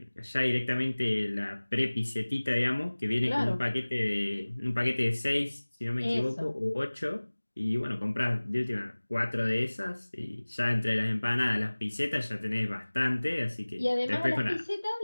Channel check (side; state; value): both; inverted; correlation -1.00